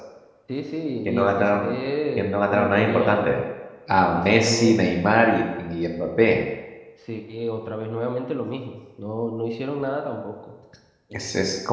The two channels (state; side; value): identical; both; correlation 1.00